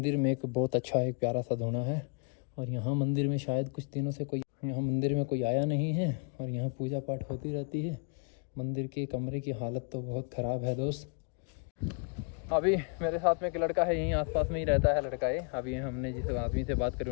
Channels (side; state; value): right; quieter; 39.1 dB